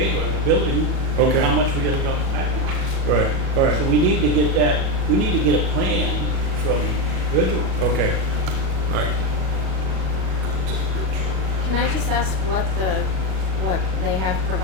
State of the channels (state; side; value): late; left; 37 ms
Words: on the building. Okay. How much we're gonna drop the package. Right, all right. So we need to get a plan from Virgil. Okay, all right. can I just ask what they have